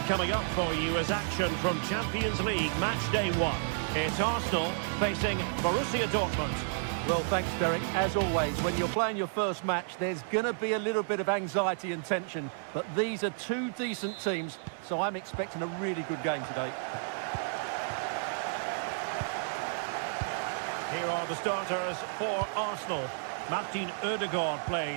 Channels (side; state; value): left; silent; digital silence